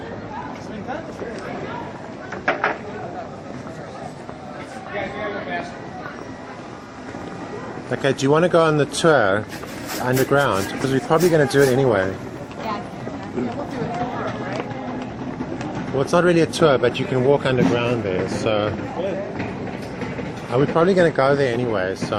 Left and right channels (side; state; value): both; identical; correlation 1.00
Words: Okay, do you want to go on the tour underground? Because we're probably going to do it anyway. Yeah, we'll do a tour, right? Well, it's not really a tour, but you can walk underground there, so... We're probably going to go there anyway, so